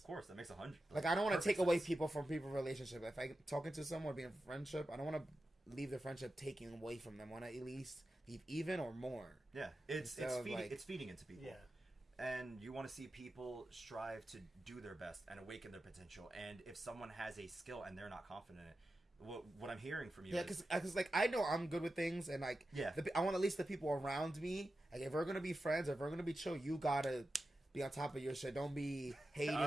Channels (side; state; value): both; normal; correlation 0.92